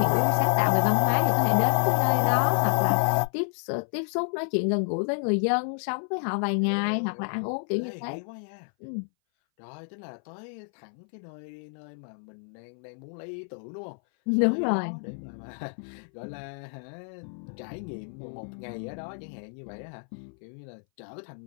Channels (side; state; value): right; silent; 59 dB below the other